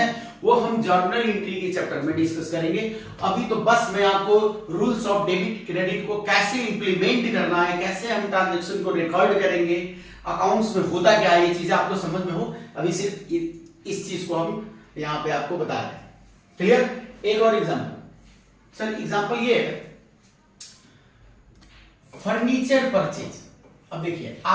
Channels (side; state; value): both; identical; correlation 1.00